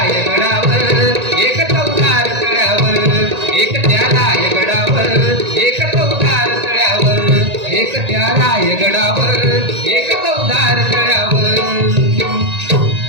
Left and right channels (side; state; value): left; late; 1.9 ms